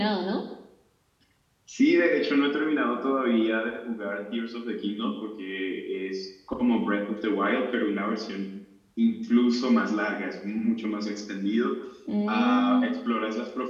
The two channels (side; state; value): both; identical; correlation 1.00